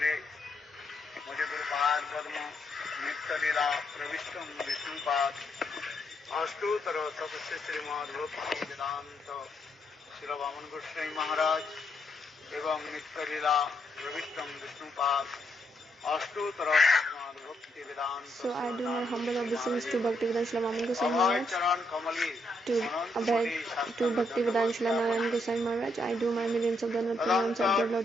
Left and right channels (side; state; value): both; normal; correlation 0.77